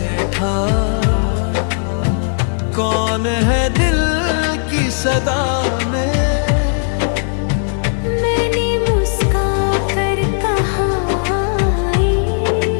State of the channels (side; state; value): right; silent; digital silence